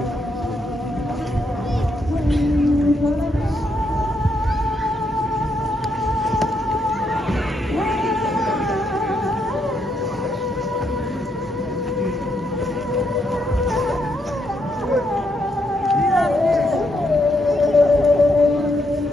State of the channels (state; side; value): normal; both; correlation 0.77